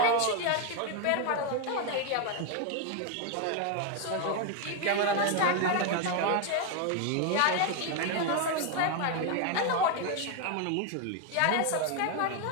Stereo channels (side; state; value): both; different; correlation 0.01